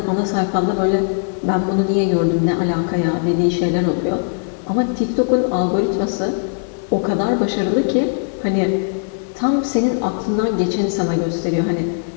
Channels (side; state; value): right; silent; digital silence